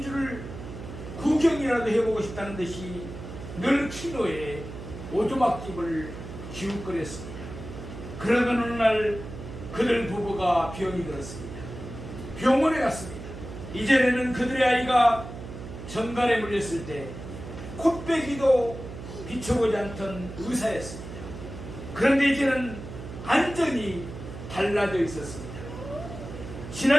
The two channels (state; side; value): noise; right; hum, 11 dB below the sound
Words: 구경이라도 해보고 싶다는 듯이 늘 키노에 오두막집을 기웃거렸습니다. 그러던 어느 날 그들 부부가 병이 들었습니다. 병원에 갔습니다. 이전에는 그들의 아이가 정갈에 물렸을 때 콧배기도 비춰보지 않던 의사였습니다. 그런데 이제는 완전히 달라져 있었습니다.